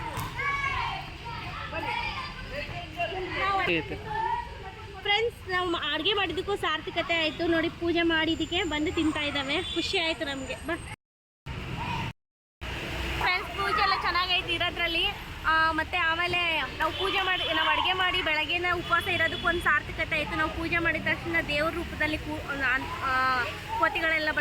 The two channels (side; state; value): both; identical; correlation 1.00